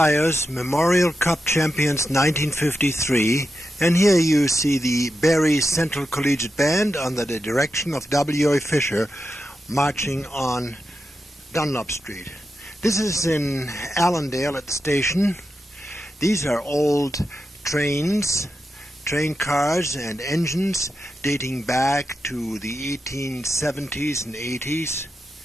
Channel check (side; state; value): both; normal; correlation 0.88